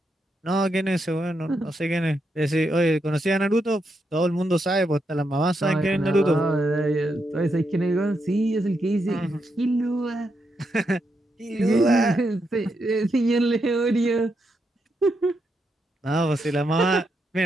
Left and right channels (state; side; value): normal; both; correlation 0.82